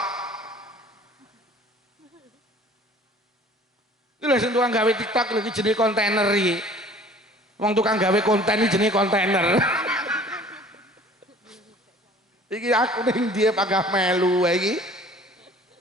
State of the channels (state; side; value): normal; both; correlation 0.49